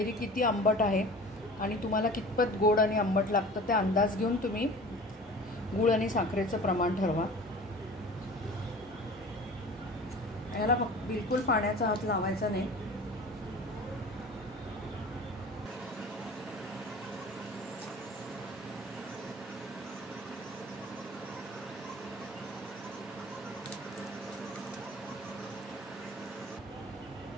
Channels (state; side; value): normal; both; correlation 0.41